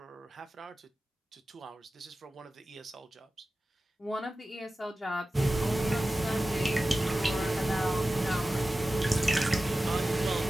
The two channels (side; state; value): both; normal; correlation 0.95